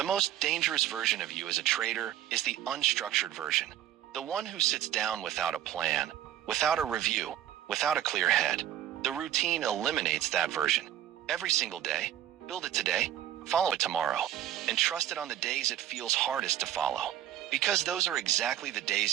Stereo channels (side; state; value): left; quieter; 11.7 dB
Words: most dangerous version of you as a trader is the unstructured version. The one who sits down without a plan, without a review, without a clear head. The routine eliminates that version. Every single day, build it today, follow it tomorrow, and trust it on the days it feels hardest to follow. Because those are exactly the